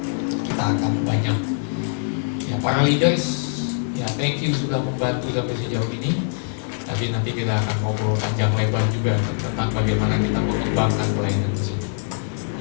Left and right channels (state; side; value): silent; right; digital silence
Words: kita akan banyak. Ya para leaders. Ya, thank you sudah membantu sampai sejauh ini. Tapi nanti kita akan ngobrol panjang lebar juga tentang bagaimana kita mengembangkan pelayanan di sini.